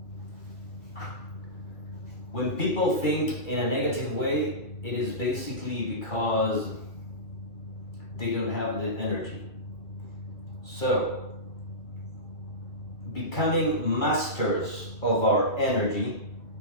When people think in a negative way, it is basically because they don't have the energy. So, becoming masters of our energy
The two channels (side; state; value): right; late; 2.4 ms